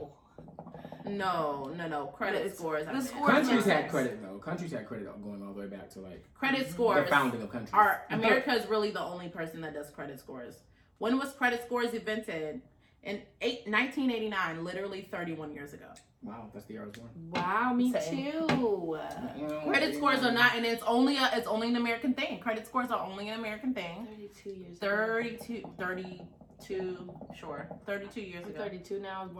No. Credit It's- scores. the I meant. scores Countries makes had sense. credit though. Countries had credit going all the way back to like Credit the scores founding of countries. America is really the only person that does credit scores. When was credit scores invented? In 1989, literally 31 years ago. Wow, that's the year I was born. Wow, me Same. too. Credit scores are not, and it's only an American thing. Credit scores are only an American thing. 32 years. 32 years I'm ago. 32 now. I was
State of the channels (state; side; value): identical; both; correlation 1.00